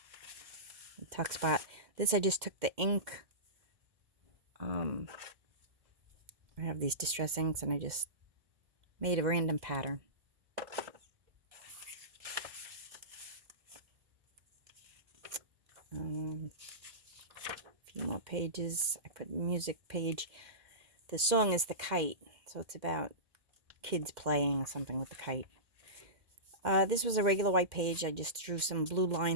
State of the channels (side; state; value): left; late; 2.1 ms